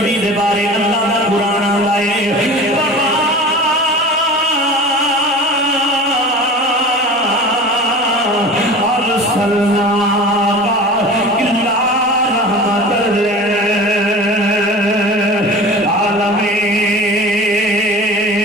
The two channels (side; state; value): both; normal; correlation 0.37